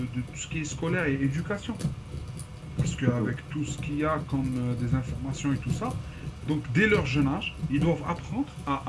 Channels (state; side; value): identical; both; correlation 1.00